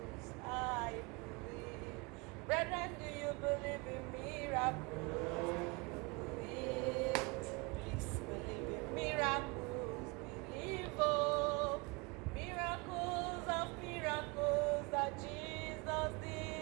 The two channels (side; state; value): left; quieter; 28.3 dB